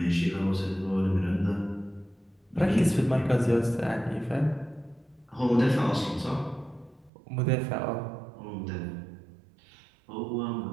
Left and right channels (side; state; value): left; drops out; at 7.1 s